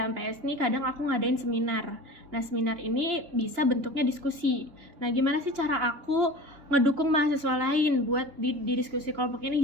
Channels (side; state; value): left; late; 2.9 ms